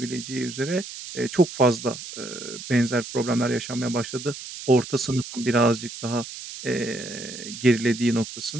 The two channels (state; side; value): noise; right; hiss, 11 dB below the sound